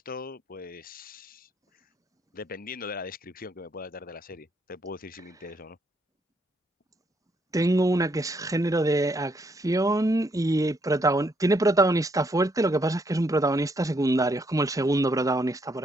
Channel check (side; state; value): both; normal; correlation 0.73